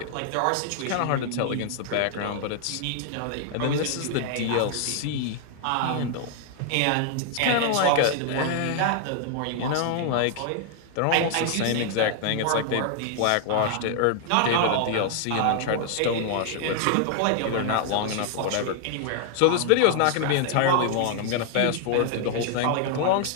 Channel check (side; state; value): both; different; correlation 0.00